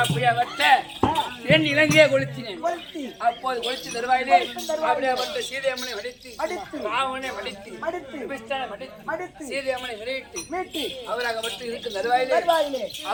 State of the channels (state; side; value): identical; both; correlation 1.00